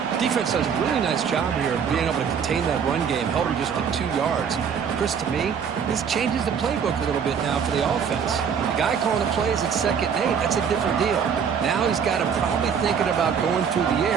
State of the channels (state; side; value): quieter; left; 7.1 dB